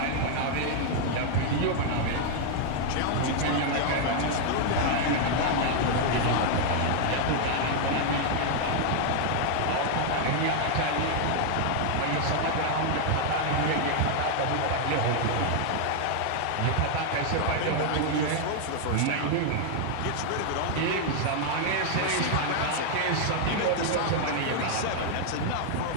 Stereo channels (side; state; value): both; different; correlation 0.00